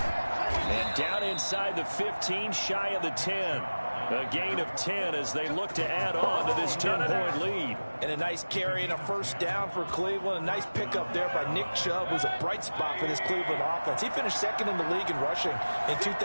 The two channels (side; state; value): both; inverted; correlation -1.00